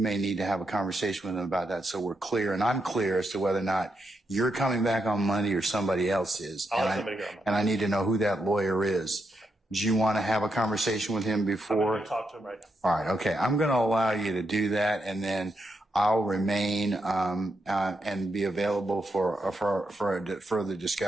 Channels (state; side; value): normal; both; correlation 0.83